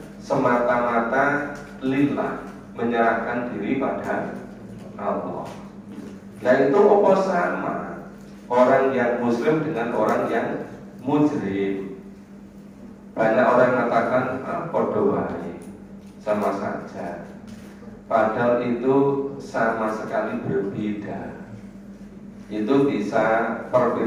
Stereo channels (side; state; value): both; identical; correlation 1.00